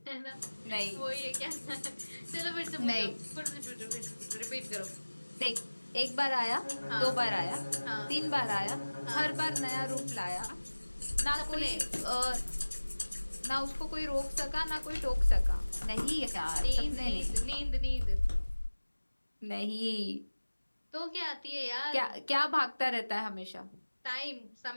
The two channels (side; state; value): both; inverted; correlation -1.00